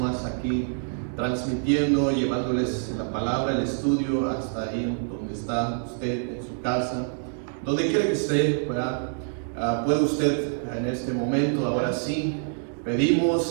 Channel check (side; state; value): left; silent; digital silence